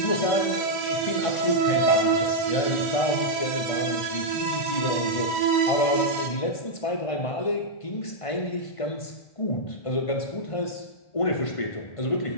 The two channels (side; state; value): right; late; 1.5 ms